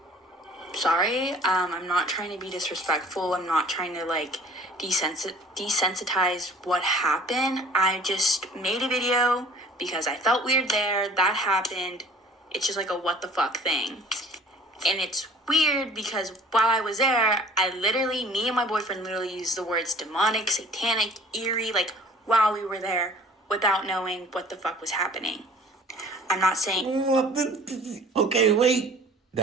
sorry. I'm not trying to be disrespectful. I'm not trying to desensitize what happened. I just made a video because I felt weird there. That happened. It's just like a what the fuck thing. And it's weird because while I was there, me and my boyfriend literally used the words demonic, satanic, eerie, like while we were there without knowing what the fuck was happening. I'm not saying... Okay, wait.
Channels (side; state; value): both; normal; correlation 0.49